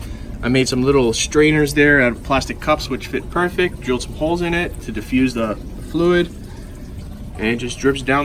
I made some little strainers there out of plastic cups, which fit perfect. Drilled some holes in it to diffuse the fluid, and it just drips down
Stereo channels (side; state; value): both; identical; correlation 1.00